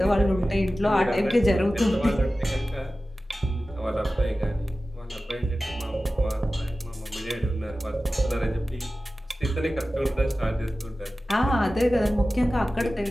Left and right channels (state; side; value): normal; both; correlation 0.95